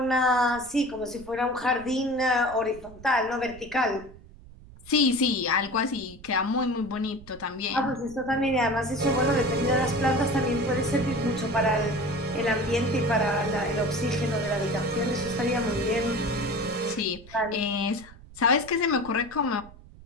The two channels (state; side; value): noise; right; rumble, 20 dB below the sound